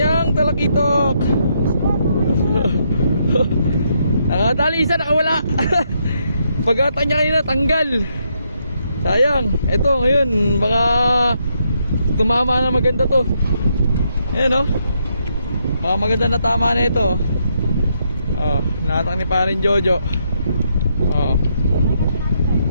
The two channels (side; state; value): both; inverted; correlation -0.76